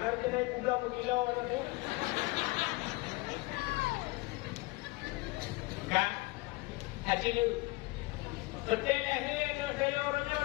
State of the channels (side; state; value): right; quieter; 23.0 dB